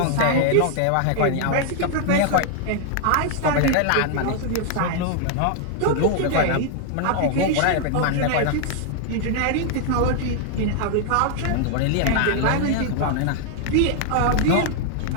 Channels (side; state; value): both; different; correlation 0.00